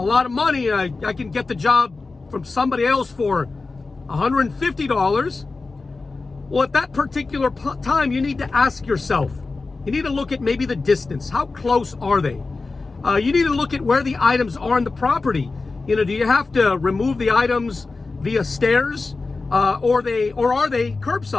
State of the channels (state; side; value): quieter; right; 3.8 dB